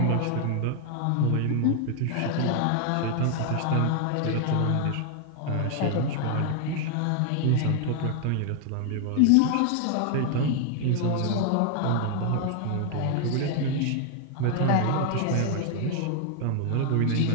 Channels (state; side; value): different; both; correlation 0.00